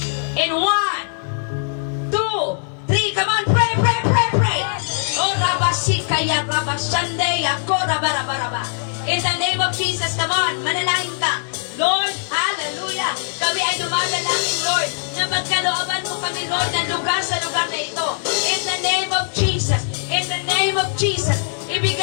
In 1, 2, 3, come on, pray, pray, pray, pray. Oh, Rabasikaya, Rabashande, Ako, Rabarabaraba. In the name of Jesus, come on, manalangin ka. Lord, hallelujah. Kami ay dumadalangin, Lord, na magkalooban mo kami, Lord, ng lugar sa lugar na ito. In the name of Jesus, in the name of Jesus,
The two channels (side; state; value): right; silent; digital silence